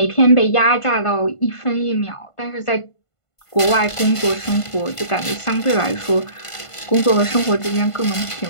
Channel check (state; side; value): late; right; 1.5 ms